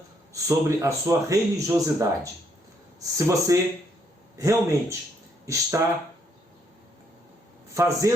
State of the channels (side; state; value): both; normal; correlation 0.72